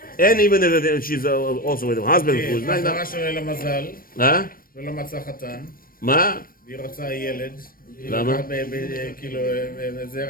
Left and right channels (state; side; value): late; right; 0.41 ms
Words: and even if she's also with a husband who is not... ולא מצא חתן. מה? והיא רוצה ילד. למה? כאילו,